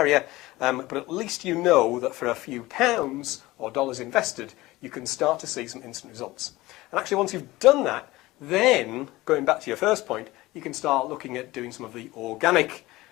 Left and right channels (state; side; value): quieter; right; 19.0 dB